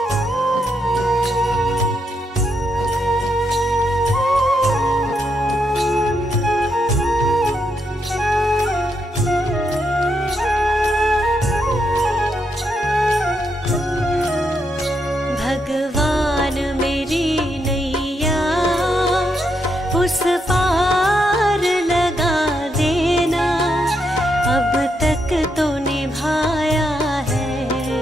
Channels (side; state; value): both; normal; correlation 0.80